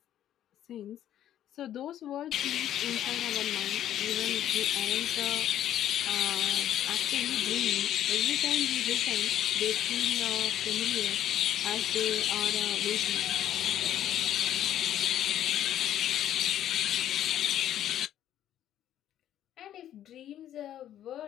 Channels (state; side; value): quieter; right; 11.4 dB